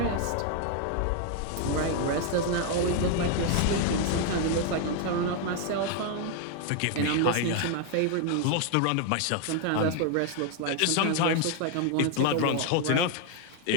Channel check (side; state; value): both; different; correlation 0.01